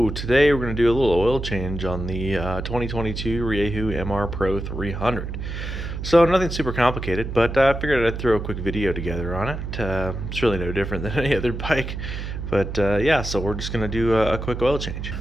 today we're going to do a little oil change on the 2022 Rieju MR Pro 300. So nothing super complicated, but I figured I'd throw a quick video together on it. It's really no different than any other bike. But yeah, so we're just going to do a quick oil change.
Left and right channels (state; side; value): noise; right; hum, 6 dB below the sound